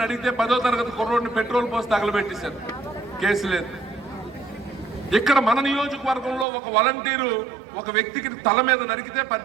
అడిగితే 10వ తరగతి కుర్రోడిని పెట్రోల్ పోసి తగలబెట్టేశారు. కేసు లేదు. ఇక్కడ మన నియోజకవర్గంలో ఒక వాలంటీరు ఒక వ్యక్తికి తల మీద నరికితే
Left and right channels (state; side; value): drops out; left; at 6.5 s